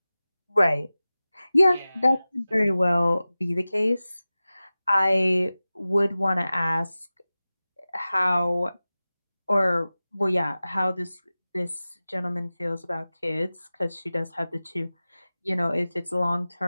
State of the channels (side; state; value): both; inverted; correlation -0.96